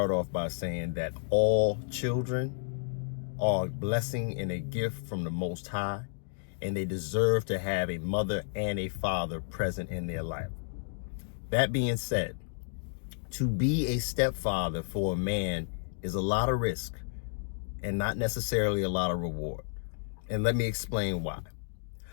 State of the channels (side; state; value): right; silent; digital silence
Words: off by saying that all children are a blessing and a gift from the Most High, and they deserve to have a mother and a father present in their life. That being said, to be a stepfather for a man is a lot of risk and not necessarily a lot of reward. And let me explain why.